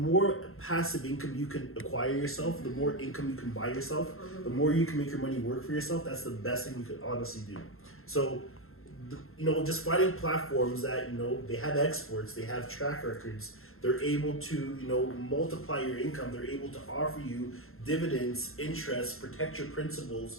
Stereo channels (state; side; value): late; right; 0.61 ms